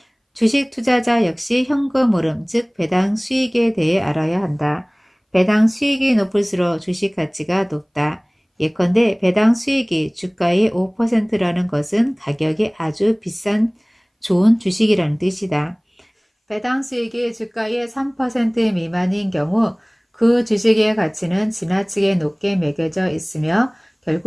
주식 투자자 역시 현금 흐름, 즉 배당 수익에 대해 알아야 한다. 배당 수익이 높을수록 주식 가치가 높다. 예컨대 배당 수익이 주가의 5%라는 것은 가격이 아주 비싼 좋은 주식이라는 뜻이다. 배당 수익이 주가의 3% 미만인 경우 그 주식의 가치는 지나치게 높게 매겨져 있으며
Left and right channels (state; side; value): identical; both; correlation 1.00